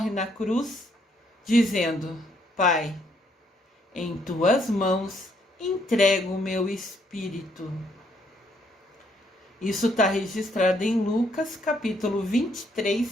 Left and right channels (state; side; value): normal; both; correlation 0.70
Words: na cruz dizendo: Pai, em tuas mãos entrego o meu espírito. Isso está registrado em Lucas, capítulo